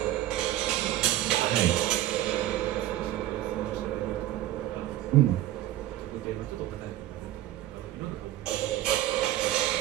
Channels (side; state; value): left; quieter; 14.1 dB